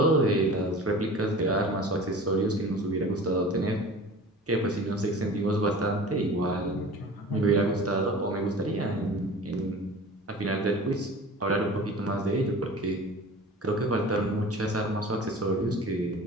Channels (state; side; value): normal; both; correlation 0.40